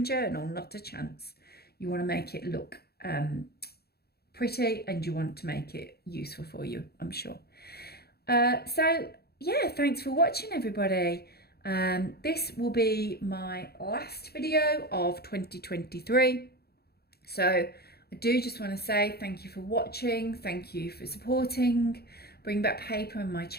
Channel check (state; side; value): late; right; 0.46 ms